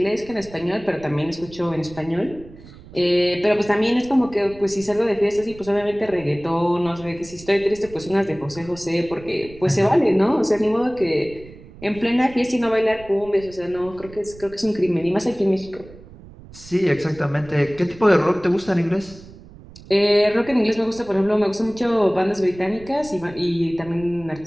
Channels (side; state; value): right; noise; rumble, 19 dB below the sound